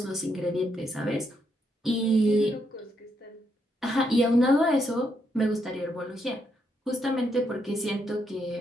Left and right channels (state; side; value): normal; both; correlation 0.78